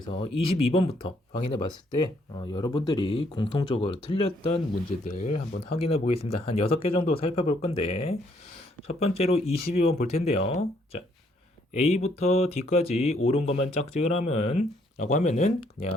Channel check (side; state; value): both; normal; correlation 0.69